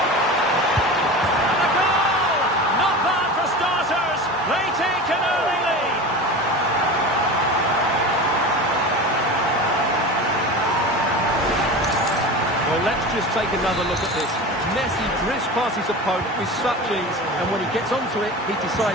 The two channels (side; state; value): both; normal; correlation 0.31